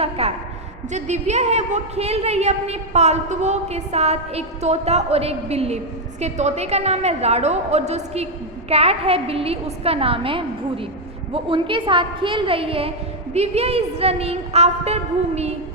कैट। जो दिव्या है वो खेल रही है अपने पालतुओं के साथ, एक तोता और एक बिल्ली। उसके तोते का नाम है राडो और जो उसकी कैट है बिल्ली उसका नाम है भूरी। वो उनके साथ खेल रही है। दिव्या इज रनिंग आफ्टर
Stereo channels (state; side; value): normal; both; correlation 0.01